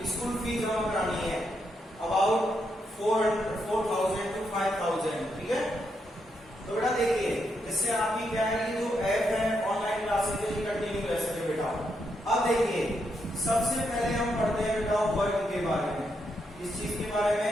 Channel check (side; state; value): both; normal; correlation 0.80